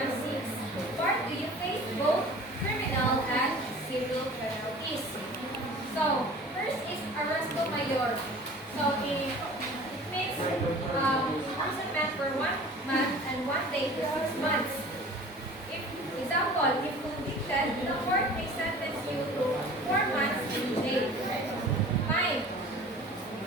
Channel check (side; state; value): both; normal; correlation 0.43